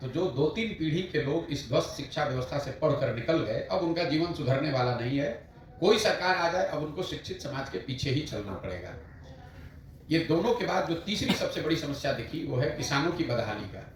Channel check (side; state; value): both; identical; correlation 1.00